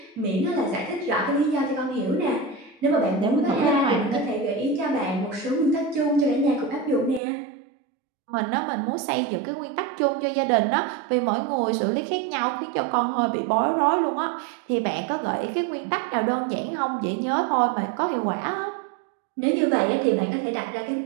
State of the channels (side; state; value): left; drops out; at 7.2 s